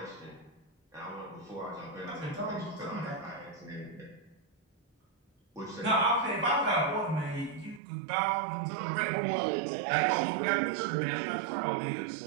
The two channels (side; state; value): left; drops out; at 7.8 s